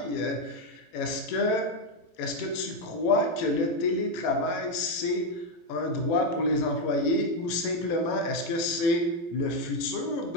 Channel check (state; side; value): late; right; 17 ms